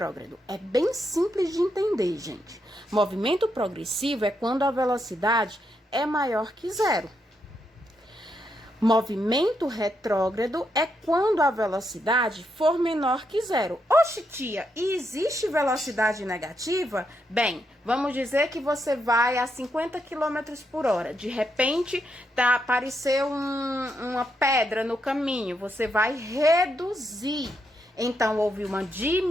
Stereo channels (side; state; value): both; normal; correlation 0.80